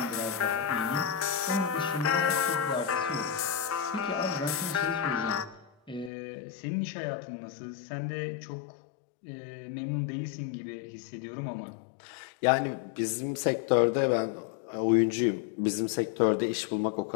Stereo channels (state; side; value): drops out; right; at 6.1 s